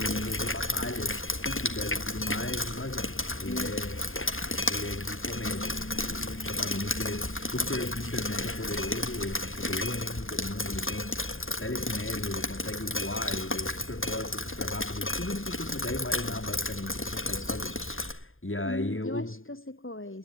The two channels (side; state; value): right; late; 0.59 ms